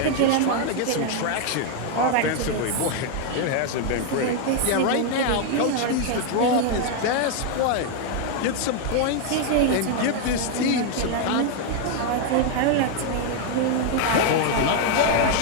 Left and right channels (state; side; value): different; both; correlation 0.00